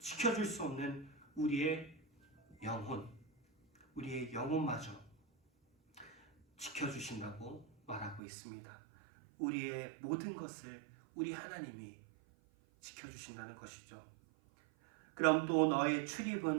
수 없는 우리의 영혼, 우리의 영혼마저 지켜주신다고 말하고 있습니다. 우리의 모든 것을 우리 하나님이 지켜주신다는 것이죠. 그럼 또 너의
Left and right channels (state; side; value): drops out; left; at 8.2 s